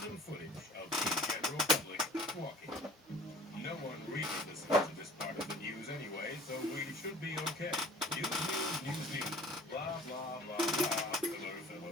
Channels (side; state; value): both; normal; correlation 0.47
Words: footage of the general public walking. No one really listens to this part of the news anyway, so we should be okay. News, news, news, news. Blah, blah, blah, blah. Filler,